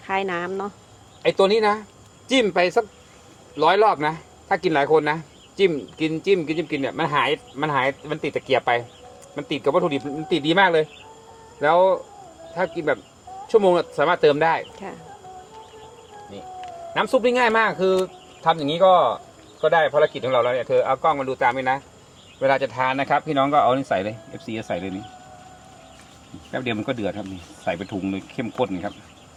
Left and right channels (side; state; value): both; identical; correlation 1.00